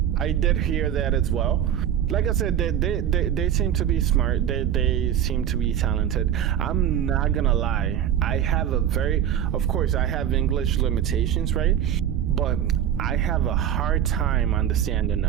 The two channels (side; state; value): left; quieter; 9.8 dB